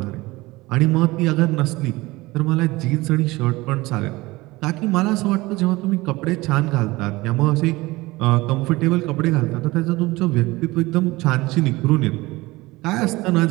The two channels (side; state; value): left; quieter; 20.7 dB